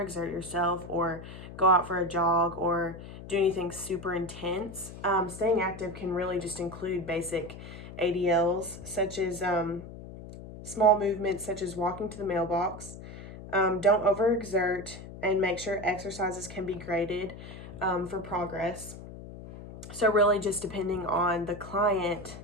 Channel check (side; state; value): left; noise; hum, 13 dB below the sound